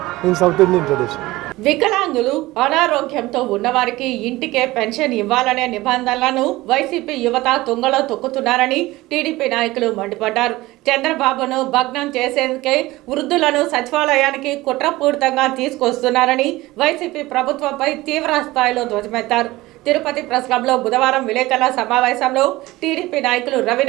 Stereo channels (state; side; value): quieter; left; 18.9 dB